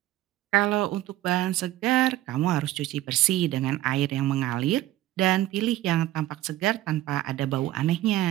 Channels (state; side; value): quieter; left; 14.9 dB